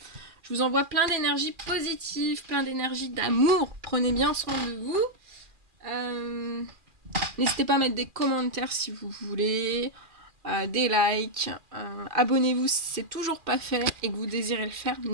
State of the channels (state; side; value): late; left; 2.4 ms